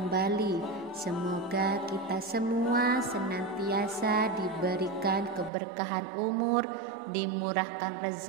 Semoga kita semua senantiasa diberikan keberkahan umur, dimurahkan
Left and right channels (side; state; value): left; drops out; at 5.5 s